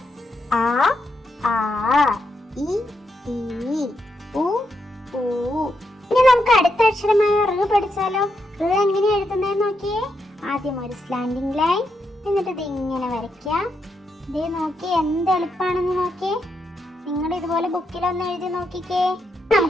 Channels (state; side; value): normal; both; correlation 0.82